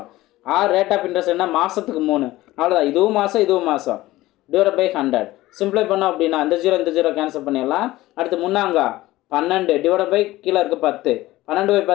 ஆர் ரேட் ஆஃப் இன்ட்ரெஸ்ட் என்ன? மாதத்துக்கு 3. அவ்வளோதான். இதுவும் மாதம் /100 சிம்பிளை பண்ணோம் அப்படின்னா இந்த 0 கேன்சல் பண்ணிடலாம். அடுத்து முன்னாங்க 12 கீழே இருக்க 10.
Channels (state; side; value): quieter; right; 17.3 dB